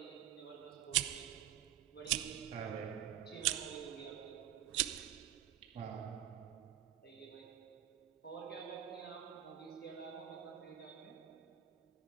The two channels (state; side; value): quieter; left; 11.9 dB